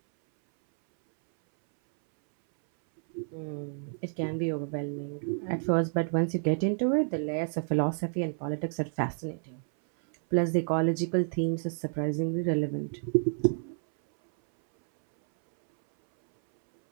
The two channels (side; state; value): left; silent; 58 dB below the other